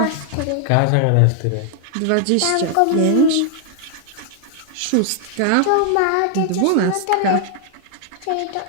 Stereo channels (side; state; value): both; different; correlation 0.00